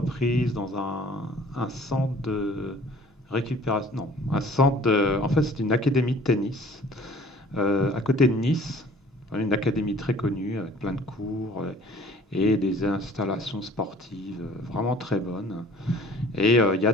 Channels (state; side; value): normal; both; correlation 0.51